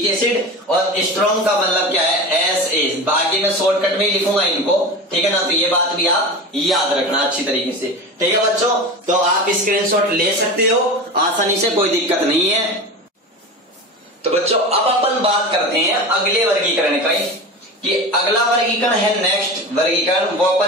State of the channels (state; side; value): normal; both; correlation 0.29